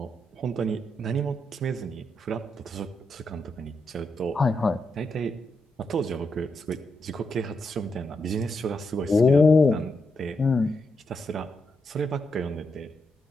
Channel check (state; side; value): normal; both; correlation 0.83